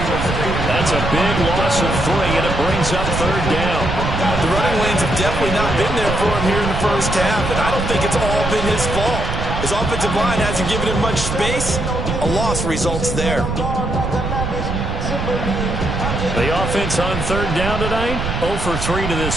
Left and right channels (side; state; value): right; noise; rumble, 4 dB below the sound